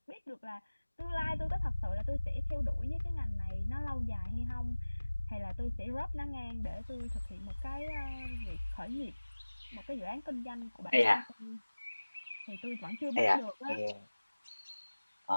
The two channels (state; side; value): inverted; both; correlation -1.00